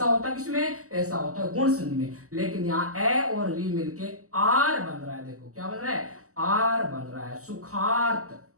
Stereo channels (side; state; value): left; late; 0.65 ms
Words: होता है किसमें? ऐसा होता है गुण संधि में, लेकिन यहाँ ए और री मिलके आर बन रहा है। देखो क्या बन रहा है? आर बन रहा है, सुखार्थ,